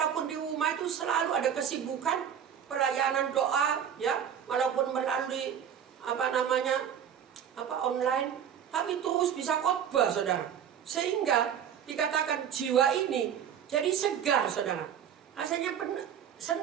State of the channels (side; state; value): left; quieter; 8.7 dB